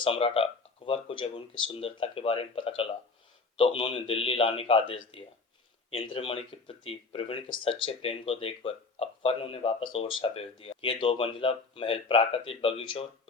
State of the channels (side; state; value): right; quieter; 4.1 dB